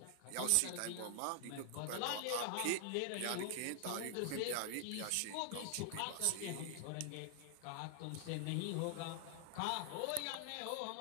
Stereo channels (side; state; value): both; different; correlation 0.00